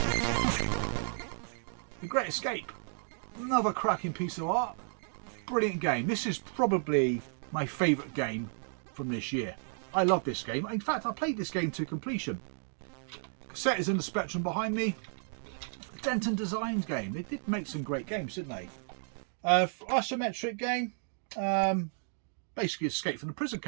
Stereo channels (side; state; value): left; silent; digital silence